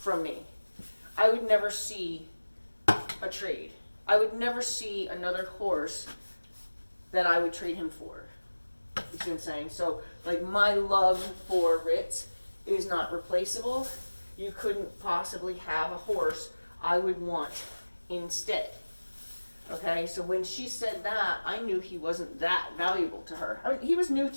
me, I would never see a trade. I would never see another horse that I would trade him for. You see what I'm saying? So, like, my love for Ritz is not replaceable. You couldn't possibly have a horse I would want instead. Okay, so when she said that, I knew he wasn't that valuable to her. I mean, he was new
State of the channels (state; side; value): inverted; both; correlation -1.00